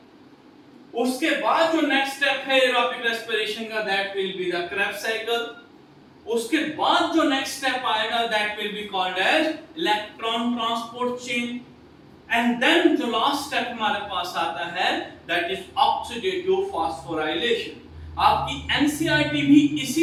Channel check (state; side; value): identical; both; correlation 1.00